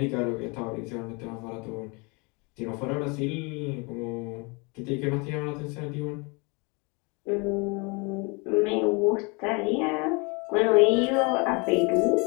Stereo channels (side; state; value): right; quieter; 30.1 dB